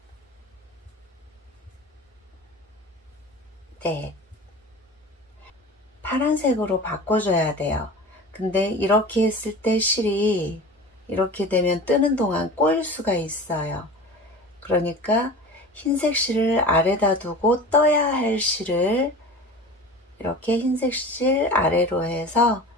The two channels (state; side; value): normal; both; correlation 0.36